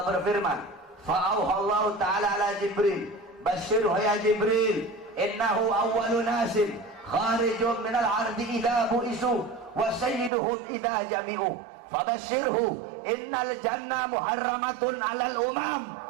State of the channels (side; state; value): left; drops out; at 10.3 s